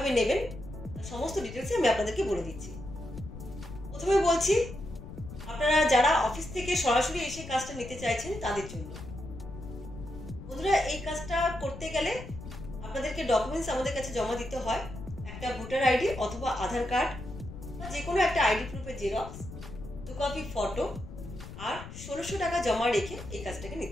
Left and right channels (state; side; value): noise; left; rumble, 12 dB below the sound